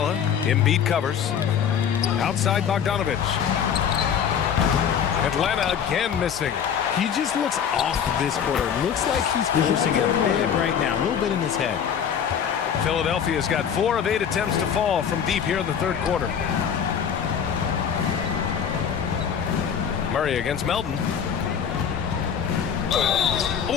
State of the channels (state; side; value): quieter; right; 7.9 dB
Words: Embiid covers. Outside Bogdanovich. Atlanta again missing. He just looks off this quarter. Looks like he's forcing it a bit right now. A little bit in his head. Philadelphia's got 4 of 8 attempts to fall from deep here in the third quarter. Murray against Melton.